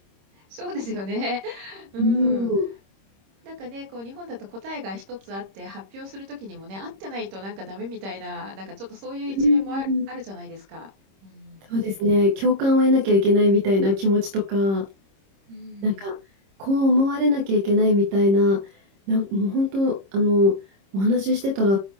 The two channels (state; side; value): late; left; 26 ms